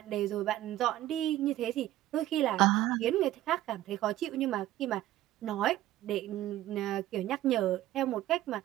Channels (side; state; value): left; quieter; 14.3 dB